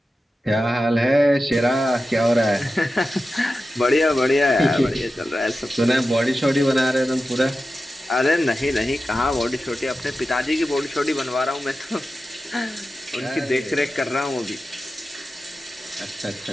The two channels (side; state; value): both; normal; correlation 0.93